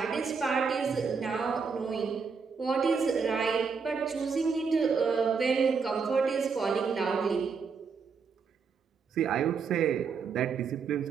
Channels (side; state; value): left; quieter; 5.5 dB